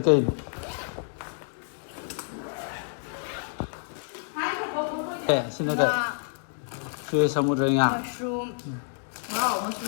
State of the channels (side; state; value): right; silent; digital silence